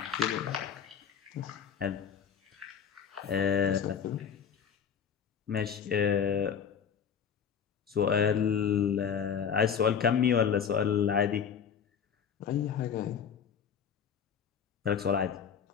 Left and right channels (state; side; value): quieter; right; 7.5 dB